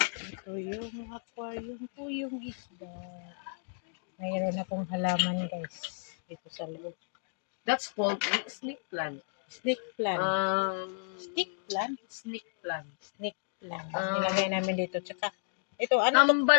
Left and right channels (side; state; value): right; silent; digital silence